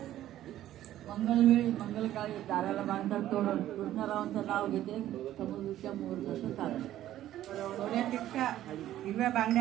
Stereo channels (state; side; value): quieter; left; 13.0 dB